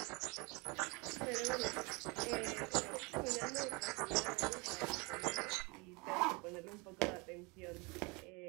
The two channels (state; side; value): quieter; left; 28.1 dB